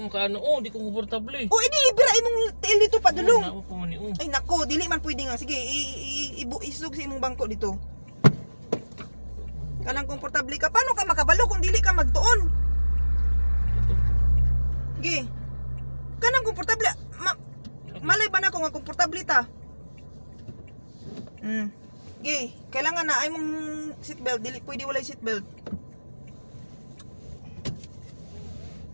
kaano. Oh, di ko komportable. O edi ibira imong tail dito padulong. Na ko man oh. Ay nako, dili man pwede nga. Sige, isug sa imong bangko dito. Kanang komportable ka. Paano ka makabalo kung dili ka magtuon? Sige. Kanang komportable. Malay ba na ako nga komportable ta? Sige. Kailangan na ay mong seatbelt. Dili pwede walay seatbelt.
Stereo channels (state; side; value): inverted; both; correlation -1.00